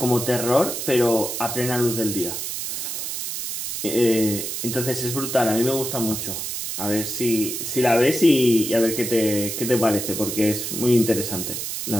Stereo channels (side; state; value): right; noise; hiss, 4 dB below the sound